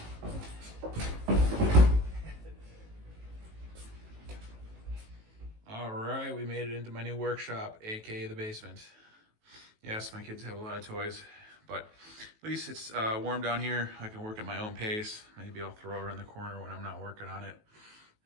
All right, we made it into my new workshop, aka the basement. Yes, my kids have a lot of toys, but at least it's warm down here. I can work at my own pace. Maybe I'll throw her in the corner when I'm not working on it.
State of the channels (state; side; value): late; left; 19 ms